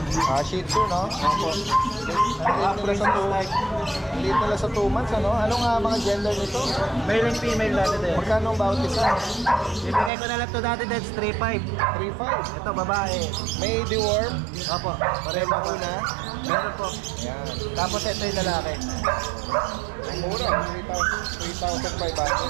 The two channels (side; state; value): left; drops out; at 10.1 s